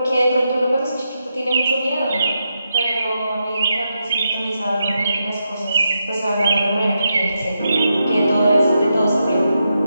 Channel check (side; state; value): both; inverted; correlation -0.85